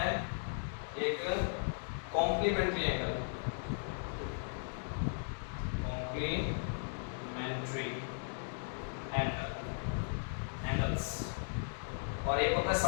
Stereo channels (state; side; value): silent; right; digital silence